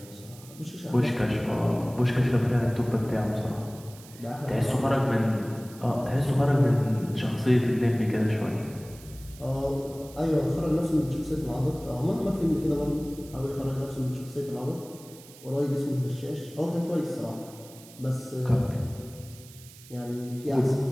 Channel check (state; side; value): noise; right; hiss, 20 dB below the sound